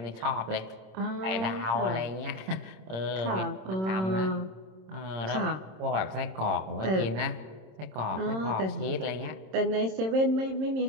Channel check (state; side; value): late; left; 26 ms